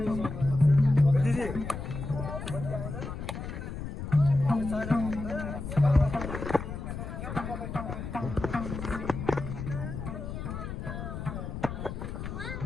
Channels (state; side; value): noise; left; rumble, 6 dB below the sound